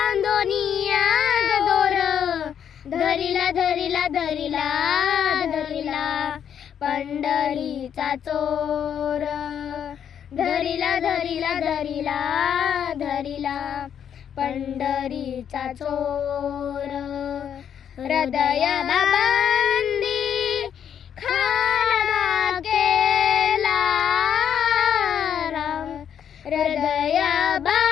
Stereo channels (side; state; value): right; quieter; 8.7 dB